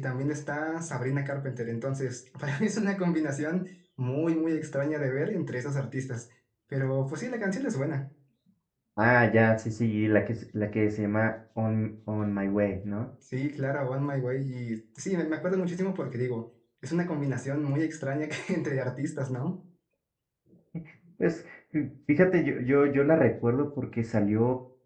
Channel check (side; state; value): both; identical; correlation 1.00